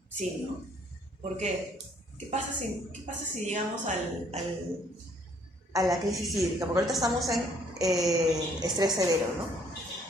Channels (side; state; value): both; normal; correlation 0.62